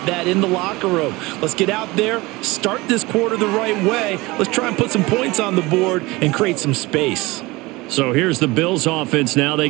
that in the locker room. Let's get out there, start this quarter the right way. Let's try and put some points on the board and create some space. So here's the Bills offense now. They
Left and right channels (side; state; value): left; quieter; 22.0 dB